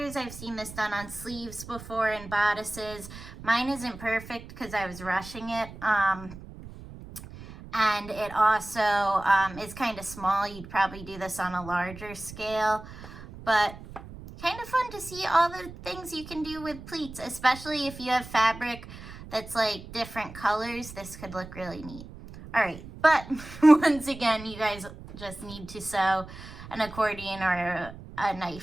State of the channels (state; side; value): noise; right; rumble, 15 dB below the sound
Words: I've seen this done on sleeves before and bodices. Mine isn't perfect because I was rushing it. And it also is kind of small. You'd probably do this on a larger scale. But kind of fun to see all the things you can do with pleats, especially if you have fabric that's like different colors. This could look really neat. All right, but once again, you guys just need to sew an accordion or a